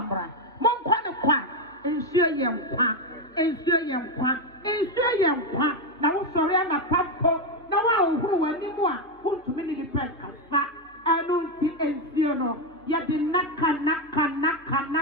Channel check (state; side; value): normal; both; correlation 0.07